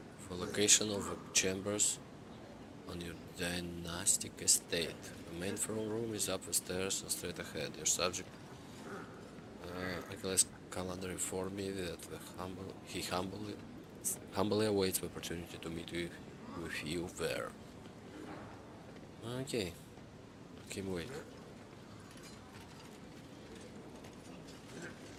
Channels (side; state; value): both; identical; correlation 1.00